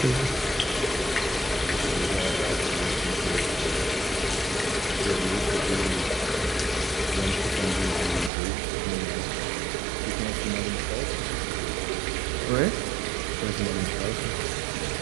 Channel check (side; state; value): left; drops out; at 8.3 s